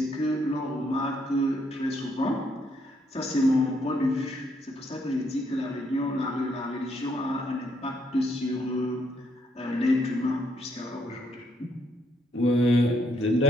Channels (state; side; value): normal; both; correlation 0.73